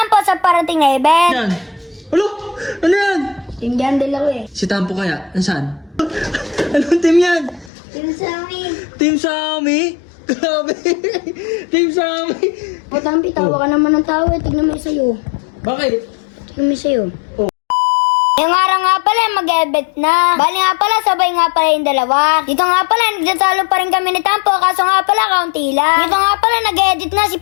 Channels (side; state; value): right; drops out; at 7.7 s